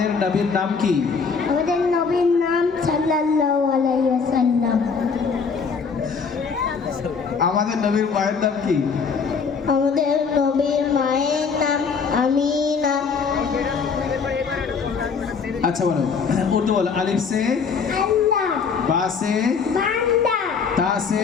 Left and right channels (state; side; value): quieter; right; 5.6 dB